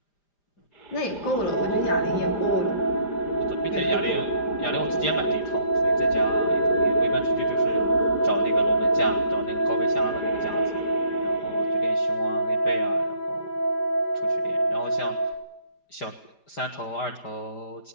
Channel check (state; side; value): late; right; 5.0 ms